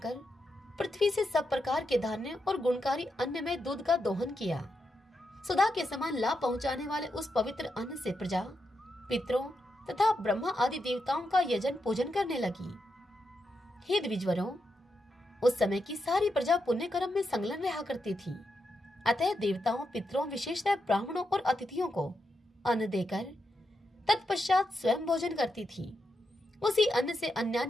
पृथ्वी से सब प्रकार के धान्य और गुणकारी अन्न में दूध का दोहन किया। सुधा के समान लाभ पहुंचाने वाले उस पवित्र अन्न से प्रजा, पितरों तथा ब्रह्मा आदि देवताओं का यजन पूजन करने लगी। हे द्विजवरों, उस समय की सारी प्रजा पुण्य कर्म में संलग्न रहा करती थी, अतः देवताओं, पितरों, विशेषतः ब्राह्मणों और अतिथियों को अन्न देकर तत्पश्चात स्वयं भोजन करती थी। उसी अन्न से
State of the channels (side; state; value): both; normal; correlation 0.85